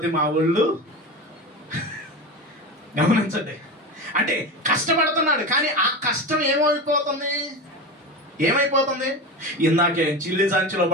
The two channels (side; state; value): both; normal; correlation 0.24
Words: మా ఊళ్ళు. గమనించండి, అంటే కష్టపడుతున్నాడు, కానీ ఆ కష్టం ఏమైపోతుంది? ఇందాకే చిల్లి సంచిలో